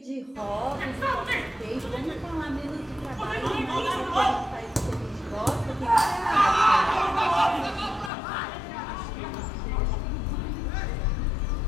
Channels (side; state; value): right; drops out; at 8.1 s